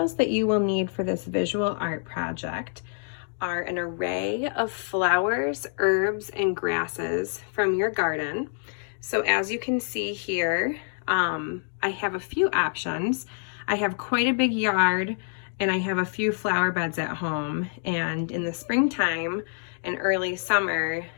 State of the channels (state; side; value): silent; right; digital silence